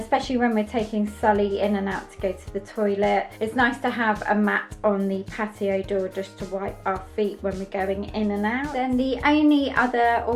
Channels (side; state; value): both; identical; correlation 1.00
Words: when we're taking Sully in and out to go to the toilet, it's nice to have a mat on the patio door just to wipe our feet when we're going in and out. Then the only other